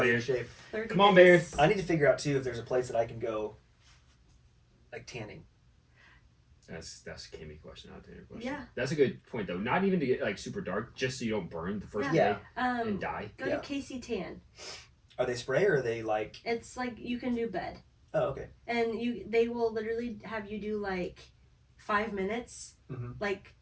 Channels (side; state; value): both; identical; correlation 1.00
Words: in Bear. shape. 30 Come on, days. Bear. I need to figure out too if there's a place that I can go, like tanning. That's a Kimmy question, not a Tanner question. Yeah. That's a good point though. Not even to get like super dark, just so you don't burn the first Yeah. day Um, and die. go Yeah. to KC Tan. Are they spray or are they like? It's like you can do bed, Oh, okay. and they will literally have you do like 5 minutes, Mhm. like